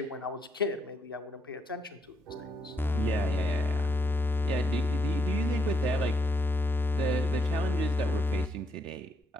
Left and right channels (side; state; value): both; normal; correlation 0.77